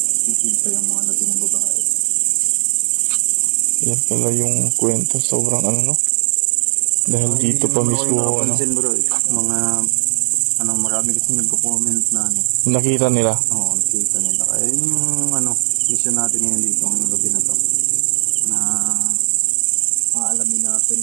nakita yung mga labi ng babae. Yan pala yung kwento, sobrang dahil dito pa mismo bro, mga marami kasi nagko-comment na nakita nila. Oo, nakita nila. Kaya yung mission natin ngayon dito ngayong gabi na to na aalamin natin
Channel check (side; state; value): left; silent; digital silence